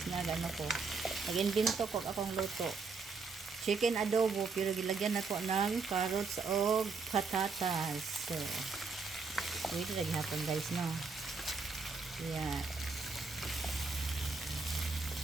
nagano ko. Nag-invento ko akong luto. Chicken adobo pero gilagyan ako ng carrots o patatas. So, wait lagi hapon guys no. Yeah.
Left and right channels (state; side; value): quieter; left; 4.6 dB